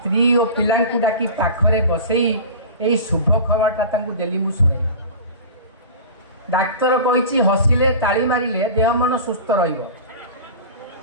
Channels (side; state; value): both; inverted; correlation -0.34